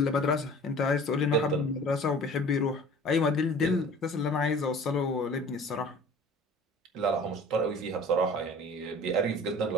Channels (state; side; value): normal; both; correlation 0.45